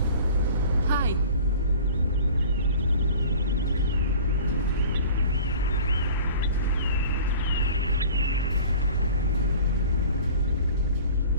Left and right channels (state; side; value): inverted; both; correlation -0.43